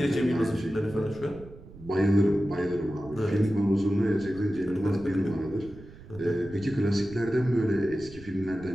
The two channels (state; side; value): noise; right; rumble, 18 dB below the sound